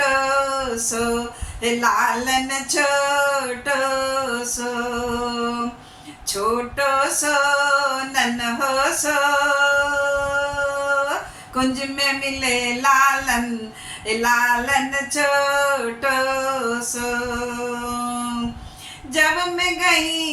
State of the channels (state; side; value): identical; both; correlation 1.00